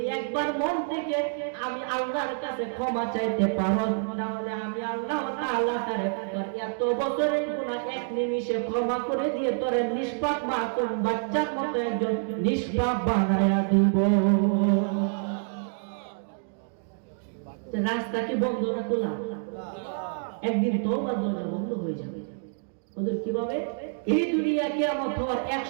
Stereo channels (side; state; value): left; silent; digital silence